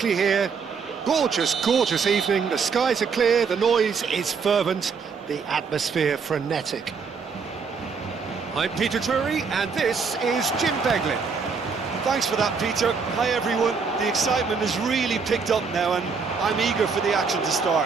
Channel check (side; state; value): left; quieter; 5.4 dB